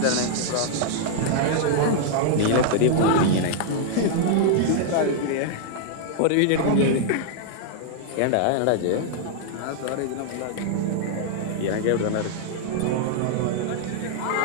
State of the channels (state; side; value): different; both; correlation -0.01